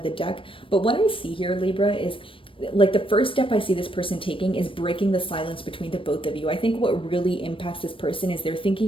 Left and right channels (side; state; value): right; late; 0.25 ms